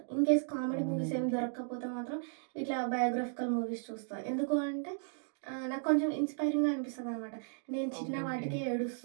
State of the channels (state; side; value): silent; left; digital silence